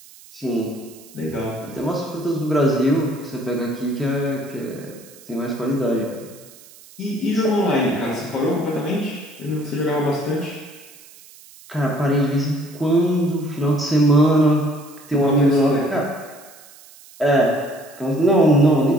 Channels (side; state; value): right; noise; hiss, 22 dB below the sound